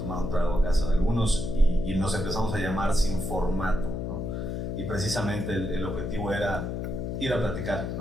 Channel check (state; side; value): noise; left; hum, 3 dB below the sound